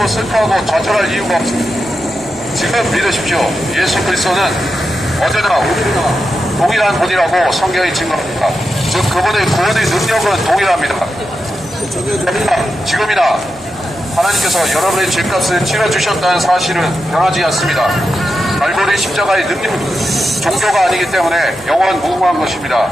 슬퍼하고 좌절할 이유가 없습니다. 지금 믿으십시오. 예수 그리스도는 어제나 오늘이나 동일한 분이라고 성경이 증거합니다. 즉 그분의 구원의 능력은 동일합니다. 지금이나 하나님께서 여러분의 죄값을 치러주셨다는 사실은 변하지 않습니다. 갈보리 십자가의 능력은 종교가 아니기 때문에 영원 무궁한 것입니다.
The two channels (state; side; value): noise; right; hum, 26 dB below the sound